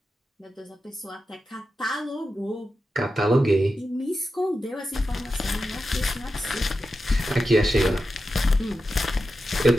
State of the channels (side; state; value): both; normal; correlation 0.90